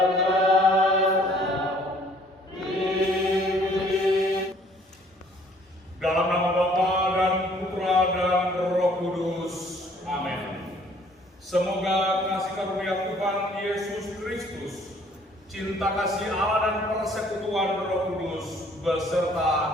nama Bapa dan Putra dan Roh Kudus. Amin. Semoga kasih karunia Tuhan Yesus Kristus, cinta kasih Allah dan persekutuan Roh Kudus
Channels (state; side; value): normal; both; correlation 0.59